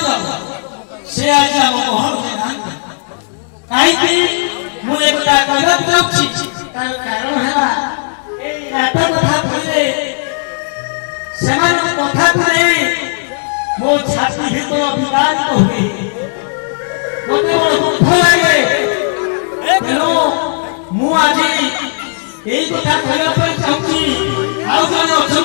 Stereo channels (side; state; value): right; silent; digital silence